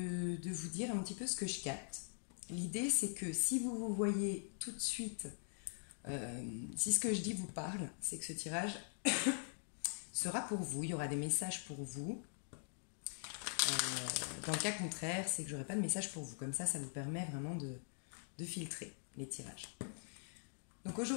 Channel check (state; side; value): silent; right; digital silence